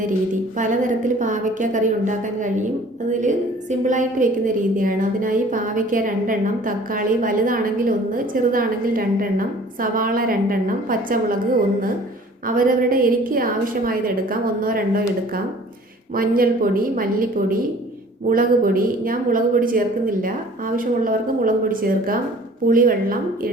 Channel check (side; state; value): both; normal; correlation 0.50